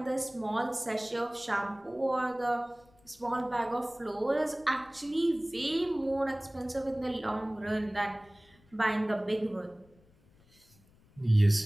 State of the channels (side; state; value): left; noise; rumble, 30 dB below the sound